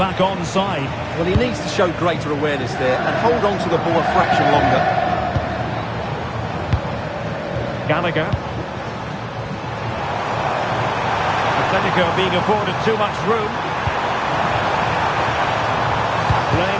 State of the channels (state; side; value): identical; both; correlation 1.00